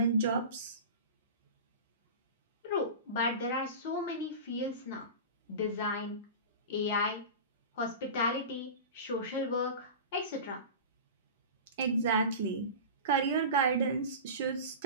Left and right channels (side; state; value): both; inverted; correlation -0.31